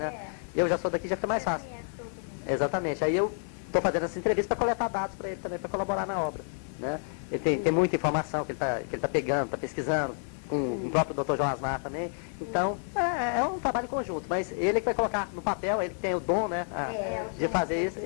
Eu já sou daqui, já fica mais fácil. Exatamente. Aí eu estou fazendo essa entrevista para coletar dados para ele também, para colaborar na obra. Né? Ele tem muita informação que ele tá pegando, está pesquisando, com o próprio Dr. João Asmar também. Então, é um trabalho conjunto, mas ele que vai colocar no papel, ele que tem o dom, né, de fazer isso,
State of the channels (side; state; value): right; silent; 58 dB below the other